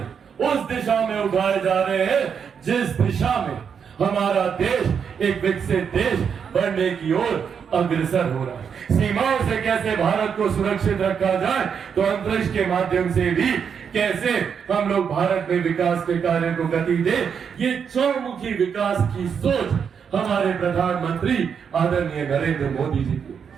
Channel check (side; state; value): left; quieter; 7.0 dB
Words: उस दिशा में उठाए जा रहे हैं जिस दिशा में हमारा देश एक विकसित देश बनने की ओर अग्रसर हो रहा है। सीमाओं से कैसे भारत को सुरक्षित रखा जाए, तो अंतरिक्ष के माध्यम से भी कैसे हम लोग भारत में विकास के कार्य को गति दे, ये चौमुखी विकास की सोच हमारे प्रधानमंत्री आदरणीय नरेंद्र मोदी जी